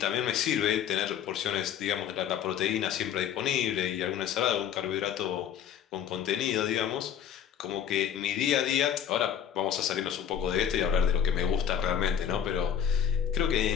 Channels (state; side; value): quieter; right; 9.2 dB